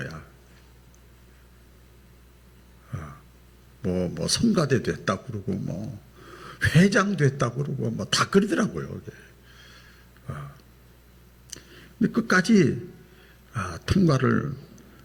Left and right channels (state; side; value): identical; both; correlation 1.00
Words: 뭐 성가대 됐다고 그러고 뭐 회장 됐다고 그러고 뭐 다 그러더라고요. 근데 끝까지 통과를